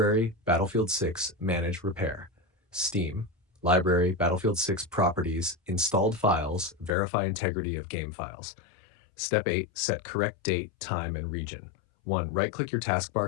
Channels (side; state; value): right; drops out; at 6.9 s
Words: Battlefield 6, manage repair. Steam, library, Battlefield 6 properties, installed files, verify integrity of game files. Step 8. Set correct date, time, and region. 1. Right-click your